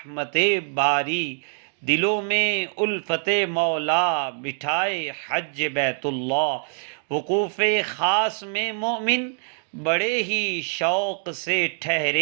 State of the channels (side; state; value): left; silent; 62 dB below the other